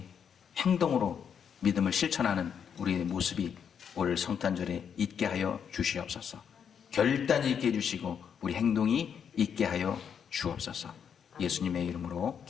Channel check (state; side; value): quieter; right; 7.6 dB